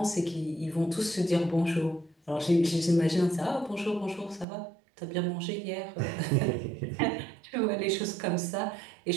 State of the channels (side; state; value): left; drops out; at 4.5 s